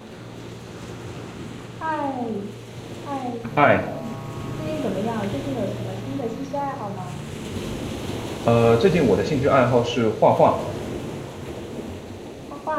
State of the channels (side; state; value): both; identical; correlation 1.00